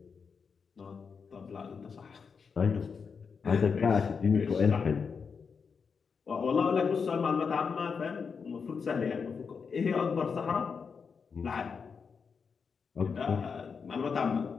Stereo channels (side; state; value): right; quieter; 5.7 dB